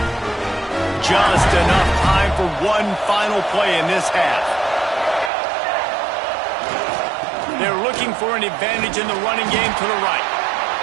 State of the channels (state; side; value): drops out; left; at 5.3 s